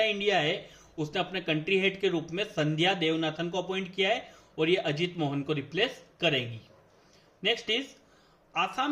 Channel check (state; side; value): identical; both; correlation 1.00